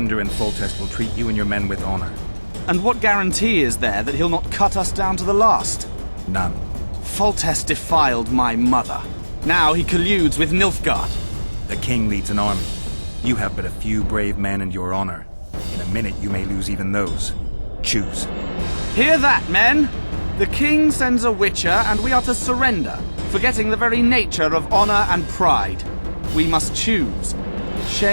and Foltest will treat you and your men with honor. And what guarantee is there that he'll not cut us down to the last? None. Foltest defiled my mother. Now he colludes with Nilfgaard. The king leads an army. You have but a few brave men and your honor. In a minute you may lose even those. Choose. Hear that, men! The king sends a witcher and we are to surrender, forgetting the very nature of honor and pride. We must choose.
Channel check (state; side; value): inverted; both; correlation -1.00